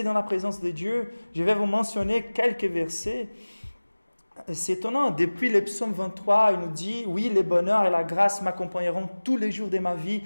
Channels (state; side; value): inverted; both; correlation -1.00